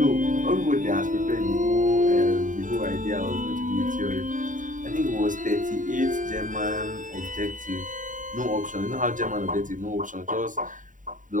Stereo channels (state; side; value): late; left; 0.38 ms